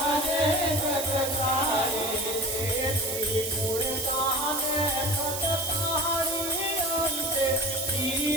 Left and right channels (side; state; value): right; noise; hiss, 3 dB below the sound